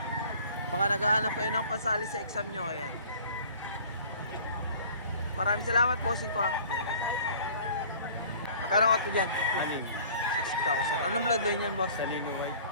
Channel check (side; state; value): both; inverted; correlation -0.49